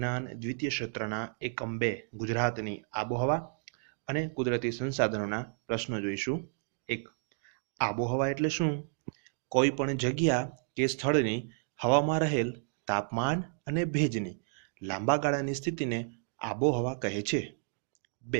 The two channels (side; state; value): left; silent; digital silence